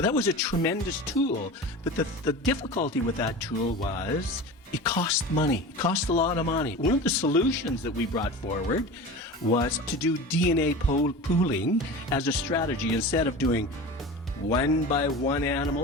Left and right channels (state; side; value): normal; both; correlation 0.32